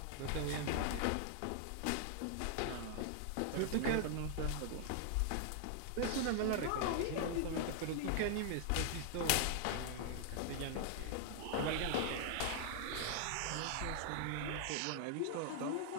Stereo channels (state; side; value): different; both; correlation 0.00